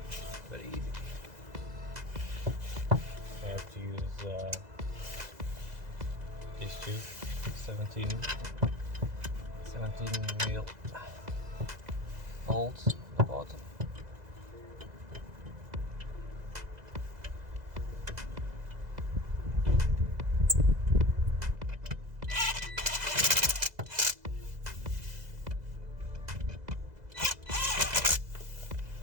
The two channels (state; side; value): late; left; 2.0 ms